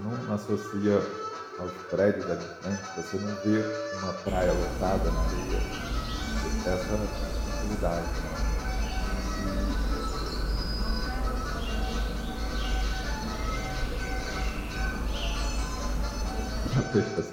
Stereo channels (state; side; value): identical; both; correlation 1.00